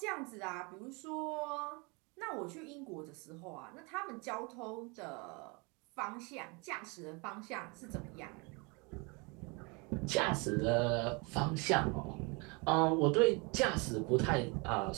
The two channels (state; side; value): quieter; left; 29.8 dB